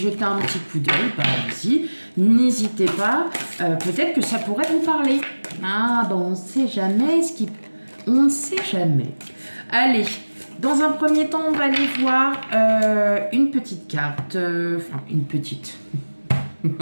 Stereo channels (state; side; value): inverted; both; correlation -1.00